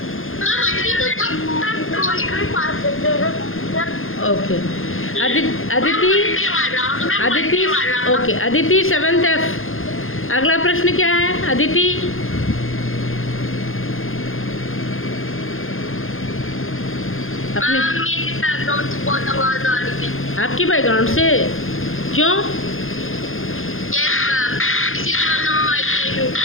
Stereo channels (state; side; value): late; right; 0.60 ms